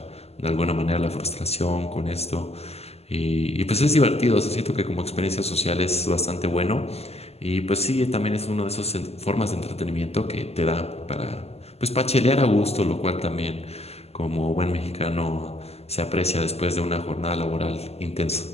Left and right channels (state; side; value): late; right; 0.30 ms